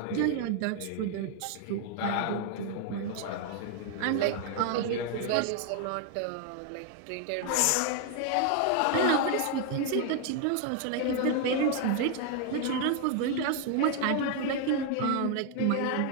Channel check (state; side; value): different; both; correlation 0.00